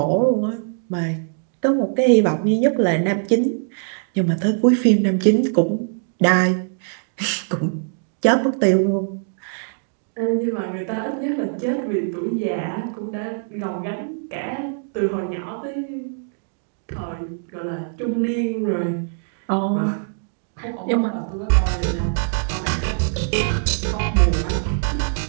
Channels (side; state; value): left; silent; digital silence